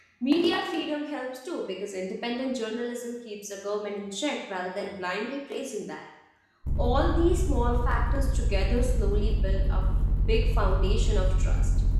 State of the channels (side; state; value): both; identical; correlation 1.00